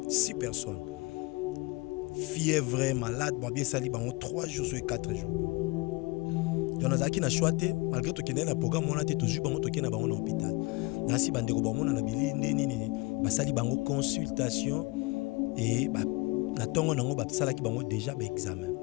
6 personnes. Fièvre malade, bien sali bango 3 jours sur 4 jours. Donc nazaki na choité malgré to kende na programme on a été toujours bango to kende bango na hôpital. Nasi bandeko bango na bili nini basali bango consultation et ba na tongo nango ba sala ki bango déjà ba examen.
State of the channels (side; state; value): right; quieter; 25.2 dB